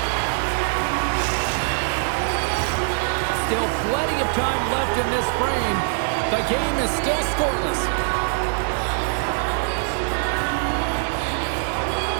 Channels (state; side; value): silent; left; 60 dB below the other